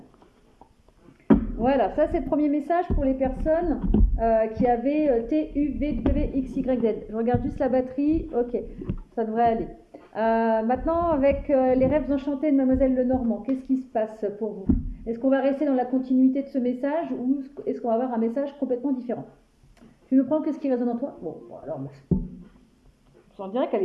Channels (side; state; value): both; identical; correlation 1.00